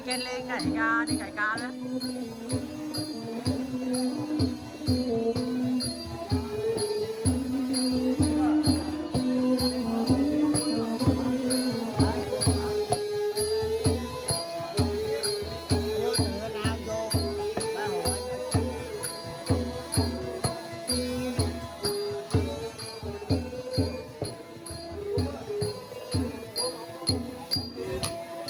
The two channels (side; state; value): both; identical; correlation 1.00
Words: trên lên cày ca đi cày ca đó.